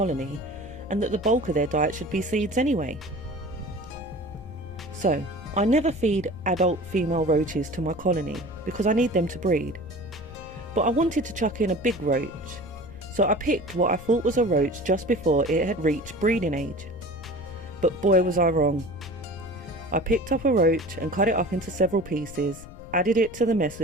and that the bulk of their diet should be seeds anyway. So, I never feed adult female roaches to my colony because I need them to breed. But I wanted to chuck in a big roach, so I picked what I thought was a roach just before it had reached breeding age. But boy was I wrong. I picked up a roach and cut it up into several pieces, added it to the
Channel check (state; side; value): noise; left; rumble, 16 dB below the sound